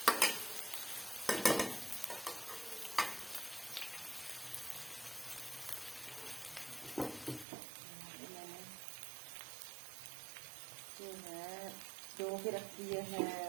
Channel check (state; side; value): drops out; left; at 7.5 s